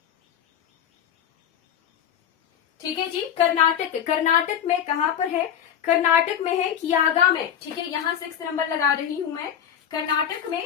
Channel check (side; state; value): right; quieter; 9.2 dB